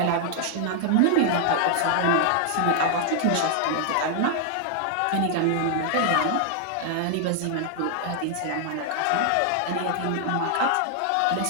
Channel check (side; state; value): both; different; correlation 0.00